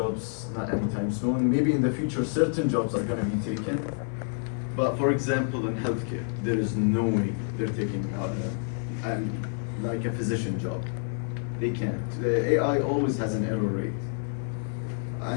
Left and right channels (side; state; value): right; silent; 59 dB below the other